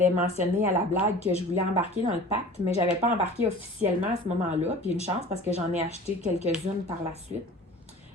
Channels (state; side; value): normal; both; correlation 0.42